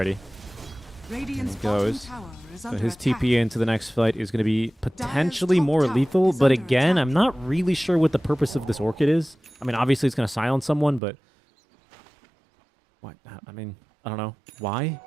Radiant's There he bottom goes. tower is So under his attack. TP into the next fight is going to be potentially top more tower lethal, is but under again, attack. I'm not really sure what the purpose of this Orchid is. I mean, obviously it's going to silence someone, but what? I mean, I don't know. Why?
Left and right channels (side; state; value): left; drops out; at 11.0 s